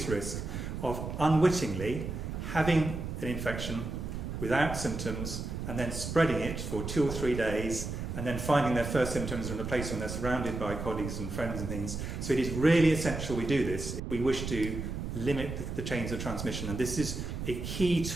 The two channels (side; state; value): right; noise; rumble, 5 dB below the sound